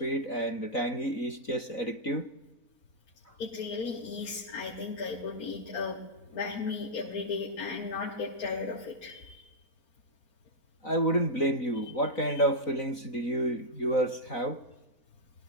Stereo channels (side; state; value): right; late; 4.0 ms